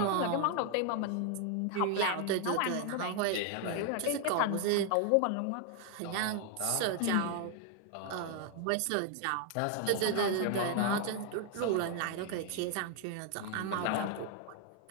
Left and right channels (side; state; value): both; different; correlation 0.00